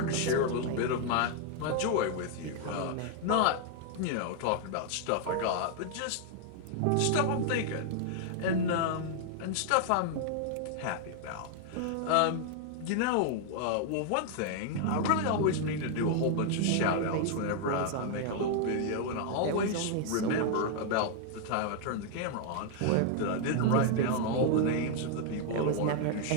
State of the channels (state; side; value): different; both; correlation 0.00